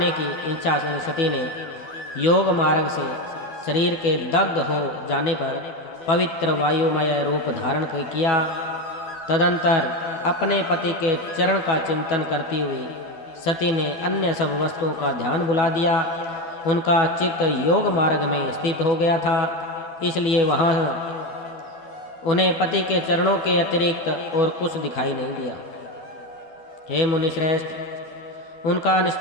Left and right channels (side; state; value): right; late; 12 ms